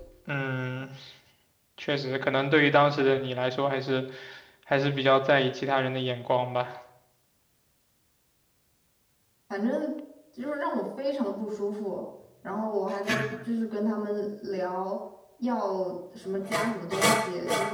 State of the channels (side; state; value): both; identical; correlation 1.00